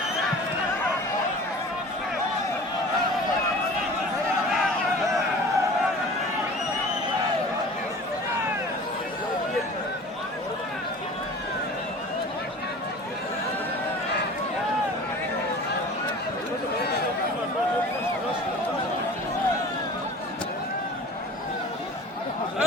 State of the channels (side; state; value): both; normal; correlation 0.41